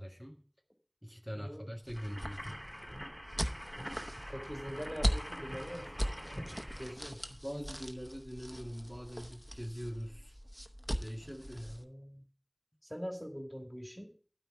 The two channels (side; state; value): both; identical; correlation 1.00